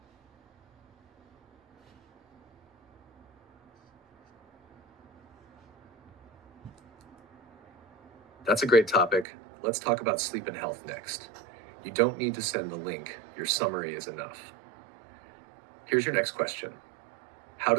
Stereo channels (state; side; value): drops out; left; at 9.2 s